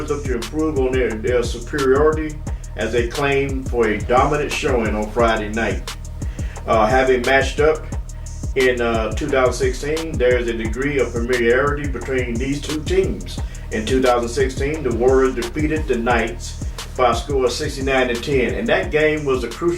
look to improve on their superiority as they claim for a dominant showing on Friday night. Having matched up in 2016, there is a degree of familiarity between these two teams. In 2016, the Warriors defeated the Knights by a score of 69-10, and that game was a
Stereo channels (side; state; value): both; identical; correlation 1.00